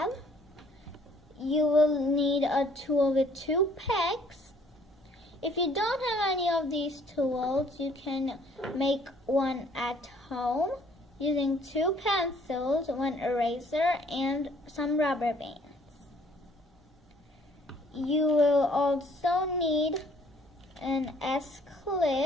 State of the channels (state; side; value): normal; both; correlation 0.61